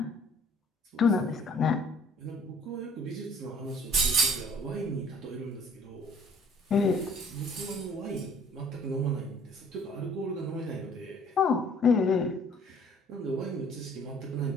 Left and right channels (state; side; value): normal; both; correlation 0.56